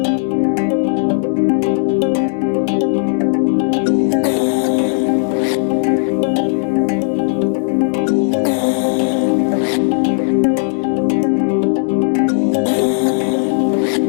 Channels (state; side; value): silent; right; 69 dB below the other